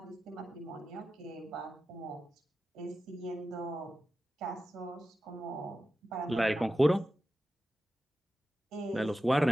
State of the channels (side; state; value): both; normal; correlation 0.93